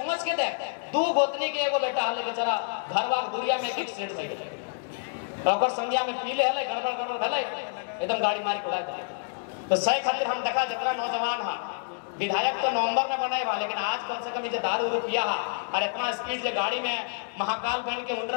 के देख 2 गोतनी के एगो बेटा हले बेचारा घरवा गुड़िया में एक एक्सीडेंट हो गया, ओकर संज्ञा में पीले हले गड़बड़ हले एकदम गाड़ी मारी उड़ा दे। तो सही खातिर हम देखा जितना नौजवान है विधायक तो नवंबर में बने बा, लेकिन आज कम से कम ये दारू रुपया है और इतना स्पीड से गाड़ी में महाकाल बन के उड़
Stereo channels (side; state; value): right; silent; digital silence